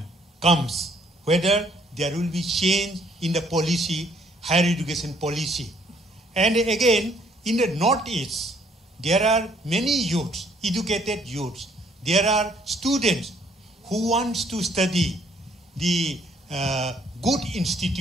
comes, whether there will be change in the policy, higher education policy. And again, in the Northeast, there are many youths, educated youths. There are students who want to study the good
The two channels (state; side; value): normal; both; correlation 0.65